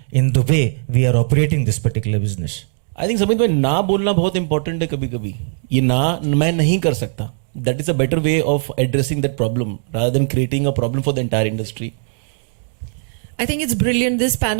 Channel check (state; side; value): silent; left; 67 dB below the other